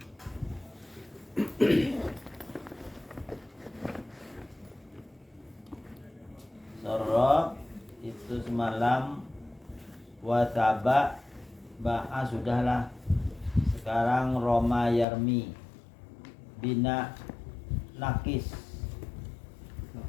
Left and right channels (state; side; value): drops out; right; at 15.1 s